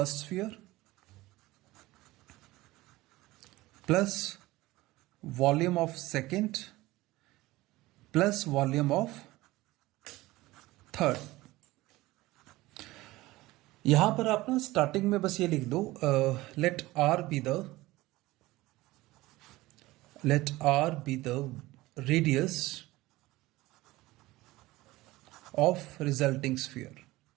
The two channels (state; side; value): quieter; left; 18.9 dB